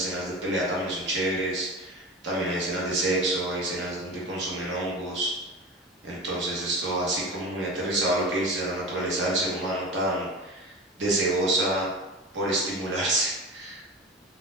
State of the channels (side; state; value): both; normal; correlation 0.31